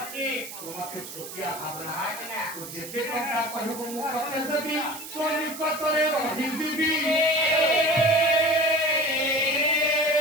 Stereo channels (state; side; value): noise; right; hiss, 11 dB below the sound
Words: ତୁ ମତେ ଛୋଟିଆ ଭାବନା ତୁ ଯେତେ ଟଙ୍କା କହିବୁ ମୁଁ ତତେ ଦେବି ତୋ ନିକଟରେ ରହିଯିବି